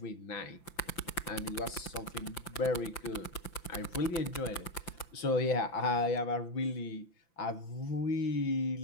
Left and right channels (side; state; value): right; late; 5.8 ms